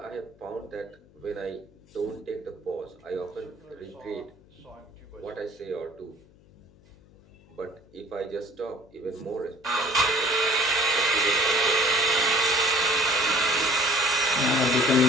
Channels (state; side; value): noise; left; hum, 27 dB below the sound